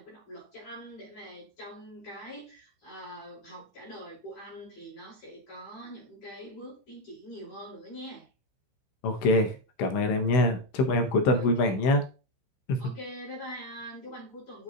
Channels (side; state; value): right; late; 15 ms